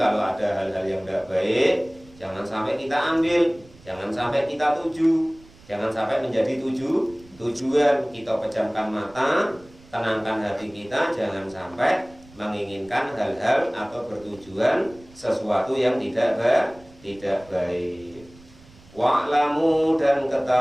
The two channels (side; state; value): right; noise; rumble, 25 dB below the sound